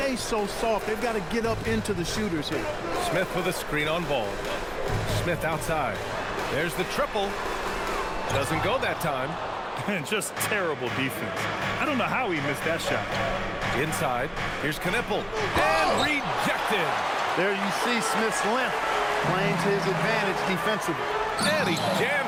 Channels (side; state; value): both; identical; correlation 1.00